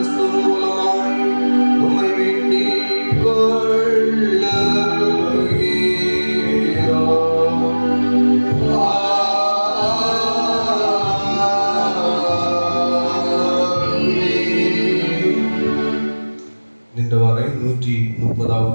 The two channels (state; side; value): inverted; both; correlation -1.00